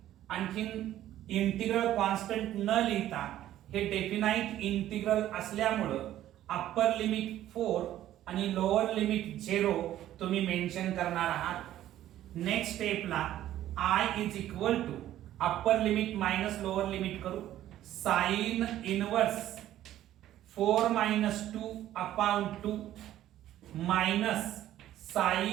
आणखीन इंटिग्रल कॉन्स्टंट न लिहिता हे डेफिनाइट इंटिग्रल असल्यामुळं अप्पर लिमिट 4 आणि लोअर लिमिट 0 तुम्ही मेन्शन करणार आहात. नेक्स्ट स्टेपला I is equal to upper limit minus lower limit करू. Sine inverse 4 minus 2 upon 2 minus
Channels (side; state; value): left; quieter; 12.9 dB